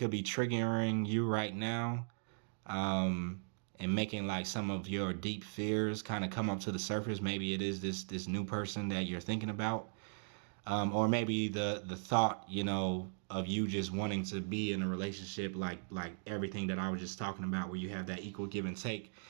be triggering you right now, and making like some of your deep fears kind of come up to the surface. Maybe it is this new person that you're thinking about, or maybe the thought, of you just wanting to be in a relationship, like everything that I was just talking about, where you have that equal give and take,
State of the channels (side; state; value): left; silent; digital silence